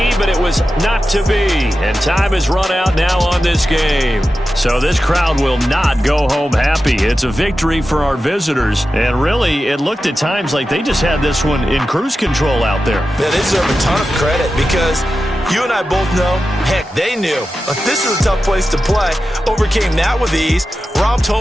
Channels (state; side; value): normal; both; correlation 0.92